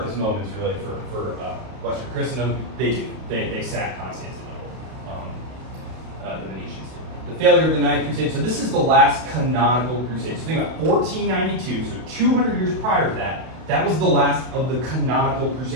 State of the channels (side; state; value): left; late; 32 ms